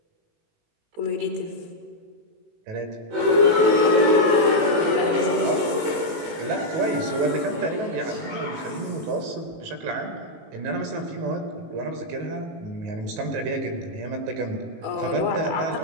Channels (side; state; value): left; late; 18 ms